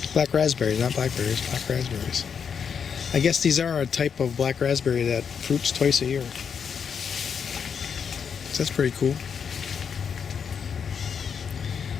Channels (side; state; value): right; quieter; 6.9 dB